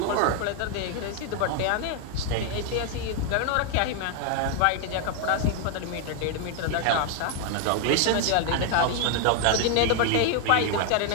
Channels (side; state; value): both; different; correlation 0.01